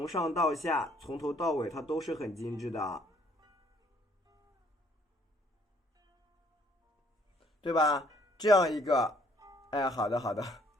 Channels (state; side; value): normal; both; correlation 0.63